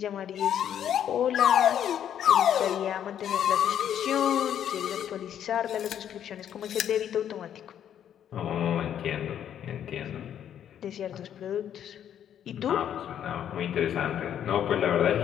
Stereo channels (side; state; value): right; quieter; 9.8 dB